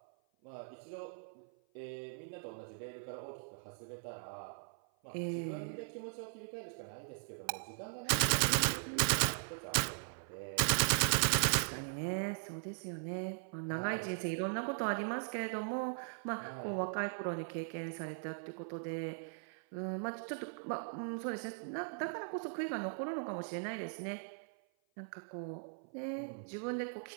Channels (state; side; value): silent; left; 51 dB below the other